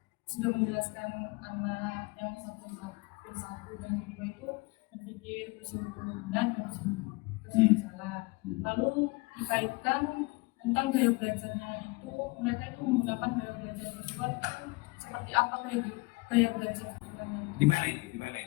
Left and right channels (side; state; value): right; quieter; 25.5 dB